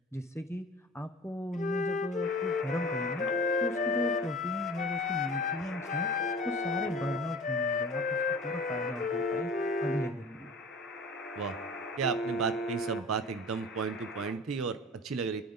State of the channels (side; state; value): both; normal; correlation 0.40